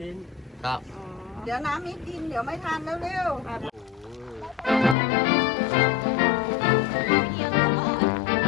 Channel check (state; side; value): drops out; right; at 5.0 s